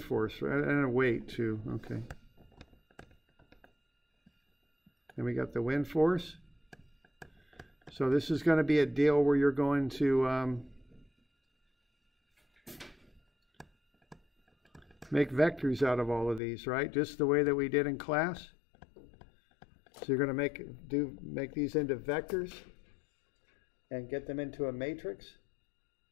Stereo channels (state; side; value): drops out; right; at 16.4 s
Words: and a weight too. Okay. Then we got the wind force. So this is going to be a deal where you're going to make vectors out of all of these, right? Just the way that we did in class. So you're going to make these into vectors and get them into a matrix.